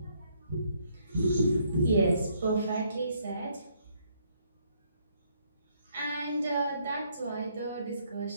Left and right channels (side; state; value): both; inverted; correlation -0.70